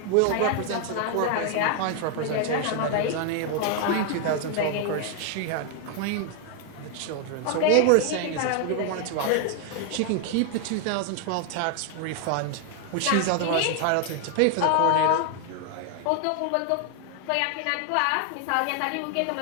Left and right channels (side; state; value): both; different; correlation 0.00